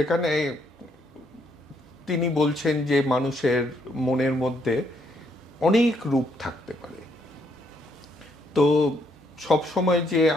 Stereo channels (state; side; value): normal; both; correlation 0.72